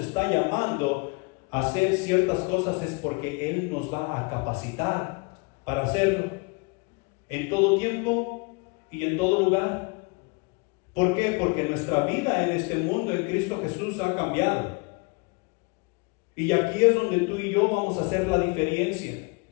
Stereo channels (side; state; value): right; quieter; 29.5 dB